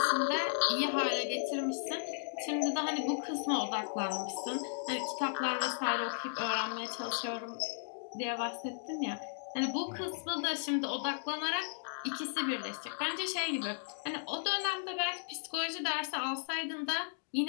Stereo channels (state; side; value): silent; right; digital silence